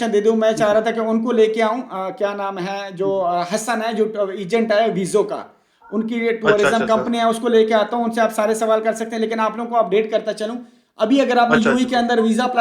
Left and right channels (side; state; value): both; identical; correlation 1.00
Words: दे दूं। मैं चाह रहा था कि उनको लेके आऊं। क्या नाम है जो हसन है जो एजेंट है वीज़ो का, उनकी अच्छा, टूरिज्म अच्छा सर। कंपनी है, उसको लेके आता हूं। उनसे आप सारे सवाल कर सकते हैं, लेकिन आप लोगों को अपडेट करता चलूं। अभी अगर आपने अच्छा, यूएई अच्छा के सर। अंदर वीज़ा